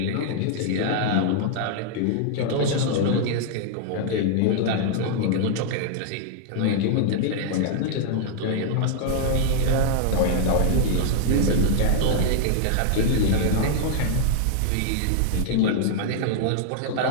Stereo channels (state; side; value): different; both; correlation 0.00